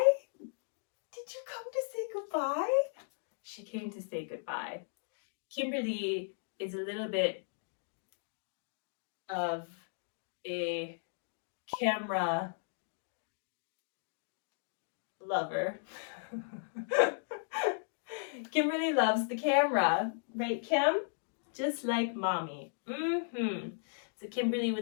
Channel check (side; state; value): right; silent; digital silence